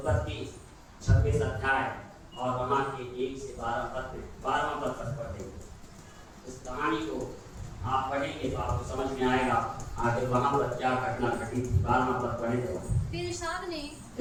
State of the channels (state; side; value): identical; both; correlation 1.00